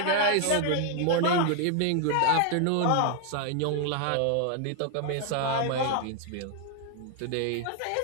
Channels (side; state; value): both; different; correlation 0.00